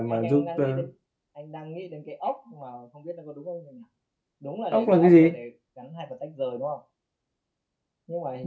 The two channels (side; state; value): both; identical; correlation 1.00